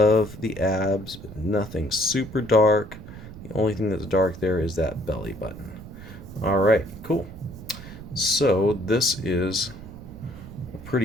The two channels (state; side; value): noise; right; rumble, 14 dB below the sound